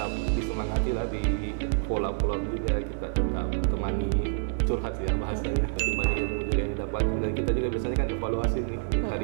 disemangati lah, di follow-up juga, kita tetap temani, curhat ya bahasanya, tapi banyak ilmu juga yang didapat. Dan kita juga biasanya kan evaluasi nih,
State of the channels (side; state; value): left; silent; 56 dB below the other